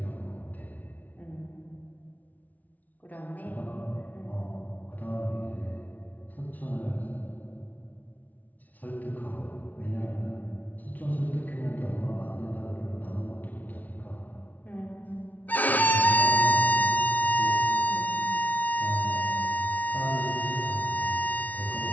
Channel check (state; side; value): late; right; 0.075 ms